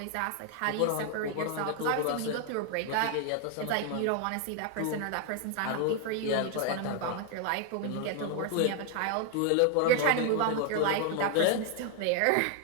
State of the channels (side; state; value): both; different; correlation 0.00